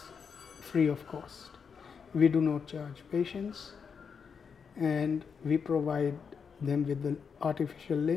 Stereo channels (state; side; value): quieter; right; 6.2 dB